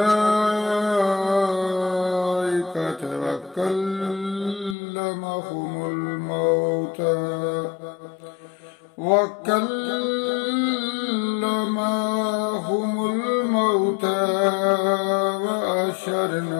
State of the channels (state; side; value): drops out; right; at 4.8 s